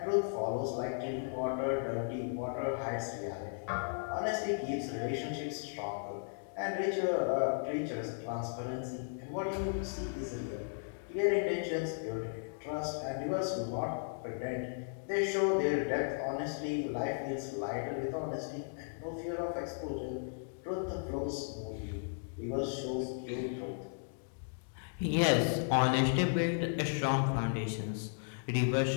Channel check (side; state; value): right; silent; digital silence